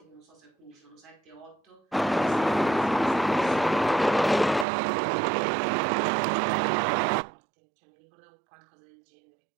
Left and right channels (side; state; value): left; drops out; at 4.7 s